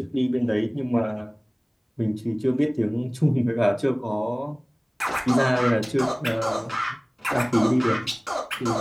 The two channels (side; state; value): both; identical; correlation 1.00